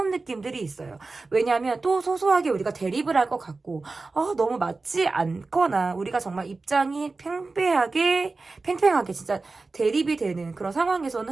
느낌들이 있어요. 왜냐하면 또 소소하게 우리가 대립을 할 것 같고 너무 맞지 않거나 우리가 정말 입장이 팽팽하게 진짜 대립이 되는 그런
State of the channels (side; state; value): left; quieter; 3.7 dB